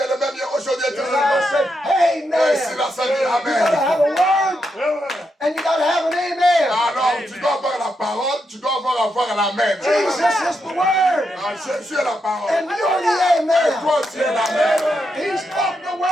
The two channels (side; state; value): both; normal; correlation 0.83